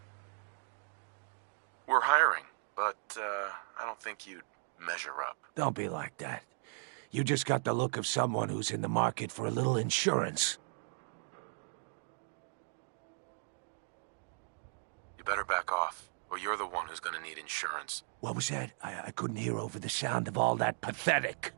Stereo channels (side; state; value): left; silent; digital silence